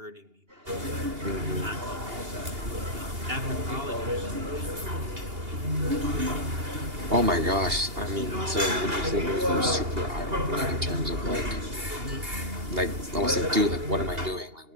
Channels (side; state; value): left; late; 2.8 ms